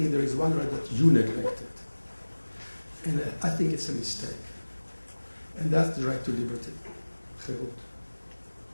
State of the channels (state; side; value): inverted; both; correlation -1.00